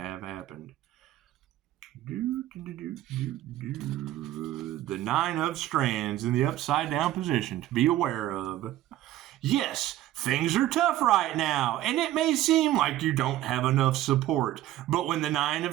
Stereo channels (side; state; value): left; quieter; 13.9 dB